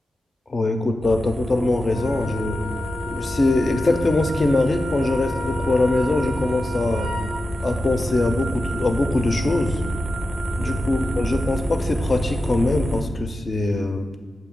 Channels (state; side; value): normal; both; correlation 0.91